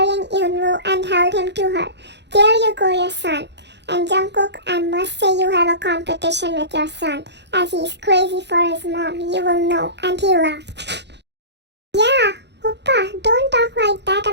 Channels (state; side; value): late; left; 0.50 ms